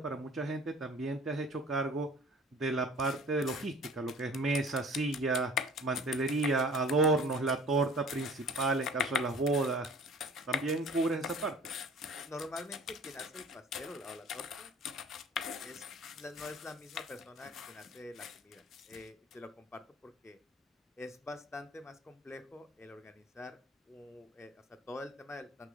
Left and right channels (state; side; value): normal; both; correlation 0.46